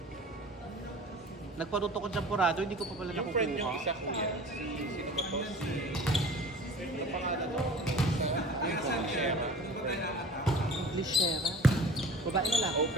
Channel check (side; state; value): both; normal; correlation 0.42